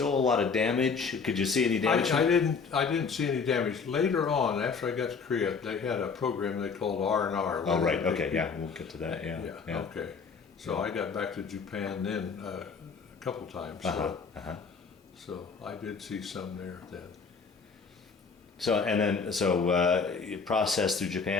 a lot of damage? Could you see any damage? I didn't see any damage. Later on, after I got to Korea, they had a program they called R&R. Oh, right. Okay. Yeah, we'll get to that. Yeah. Yeah. Okay. So I got back to Japan then a couple times. So I did see some there then. So you processed through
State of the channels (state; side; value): quieter; right; 5.3 dB